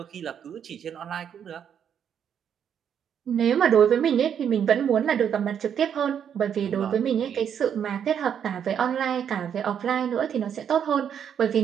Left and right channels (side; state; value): left; quieter; 8.4 dB